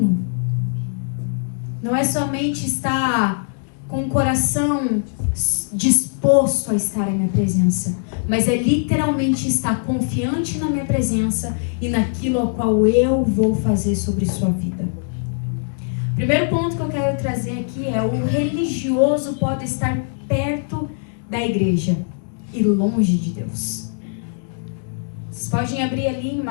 Não é somente estar com o coração disposto a estar em minha presença, mas é literalmente estar confiante na minha presença e naquilo ao qual eu vou fazer sobre sua vida. O primeiro ponto que eu quero trazer aqui é: o religioso pode estar perto da igreja e longe de Deus. Vocês podem abrir ali em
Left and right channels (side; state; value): right; silent; digital silence